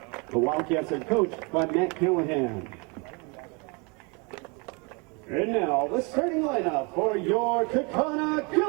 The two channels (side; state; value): left; quieter; 31.1 dB